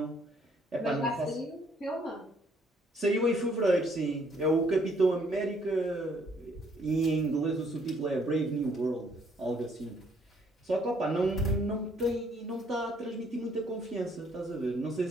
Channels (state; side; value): normal; both; correlation 0.66